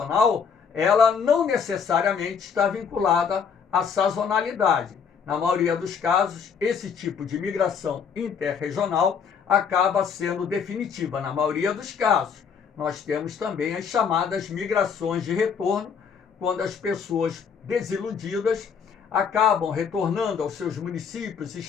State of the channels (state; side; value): quieter; right; 6.6 dB